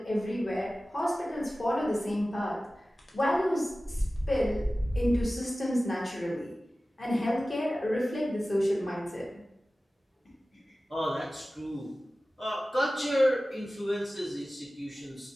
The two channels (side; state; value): both; normal; correlation 0.96